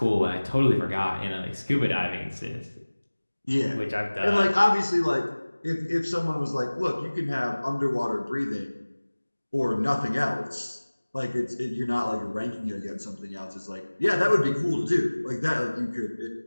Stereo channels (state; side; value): inverted; both; correlation -1.00